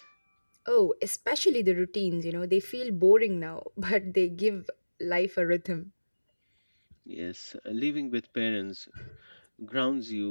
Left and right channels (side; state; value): both; inverted; correlation -1.00